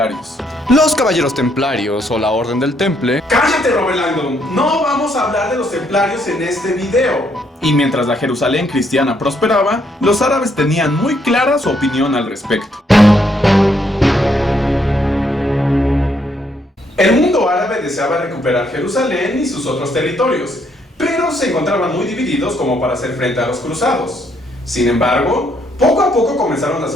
Los caballeros templarios o la Orden del Temple... ¡Cállate, Robert Langdon! No vamos a hablar de los templarios en este video. Y mientras la Jerusalén cristiana prosperaba, los árabes tenían muy clara su opinión al respecto. El mundo árabe deseaba recuperar Jerusalén y sus otros territorios, pero se encontraban muy divididos como para hacer frente a los cruzados. Sin embargo, poco a poco comenzaron a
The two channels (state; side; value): normal; both; correlation 0.72